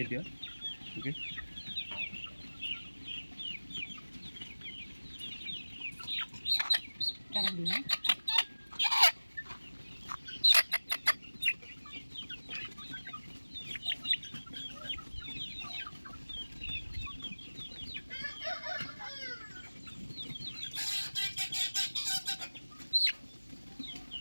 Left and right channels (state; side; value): inverted; both; correlation -1.00